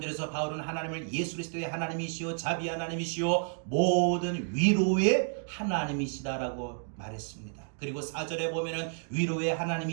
바울은 하나님을 예수 그리스도의 하나님이시오, 자비 하나님이시오, 모든 위로의 하나님이시다라고 말했습니다. 그리고 4절에 보면은 위로의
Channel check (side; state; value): left; silent; 57 dB below the other